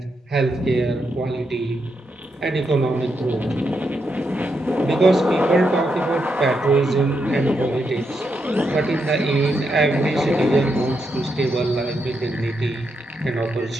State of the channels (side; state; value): both; normal; correlation 0.82